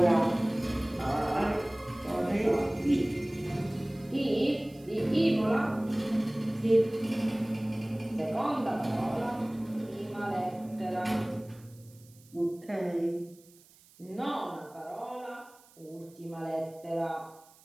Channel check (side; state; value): right; noise; hiss, 27 dB below the sound